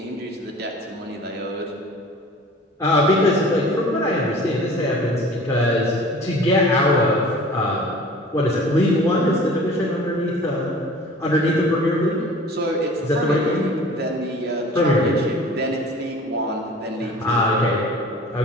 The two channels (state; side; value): normal; both; correlation 0.45